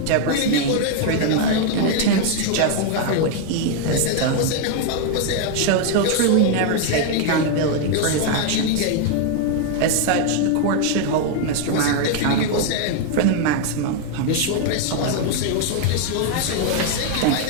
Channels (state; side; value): different; both; correlation 0.01